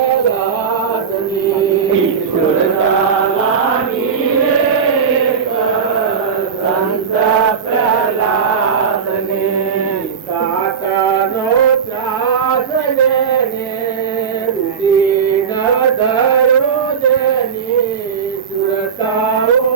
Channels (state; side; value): quieter; left; 6.6 dB